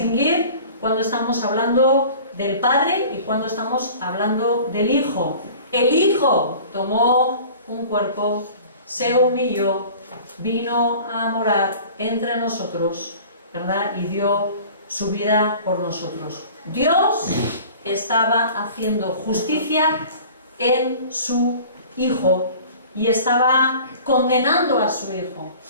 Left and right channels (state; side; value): inverted; both; correlation -0.44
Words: cuando estamos hablando del Padre y cuando estamos hablando del Hijo. El Hijo tomó un cuerpo, se humilló, vino a morar entre nosotros, ¿verdad? Y dio su vida por nosotros. Dios estaba haciendo justicia en su Hijo y estaba condenando a su Hijo.